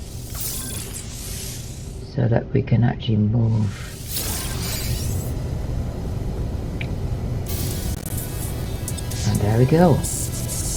so that we can actually move. And there we go.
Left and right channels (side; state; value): both; identical; correlation 1.00